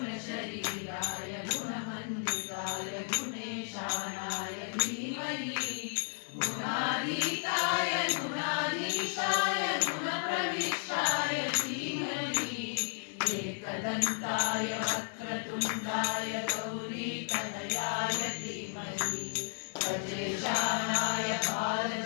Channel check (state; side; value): silent; right; 55 dB below the other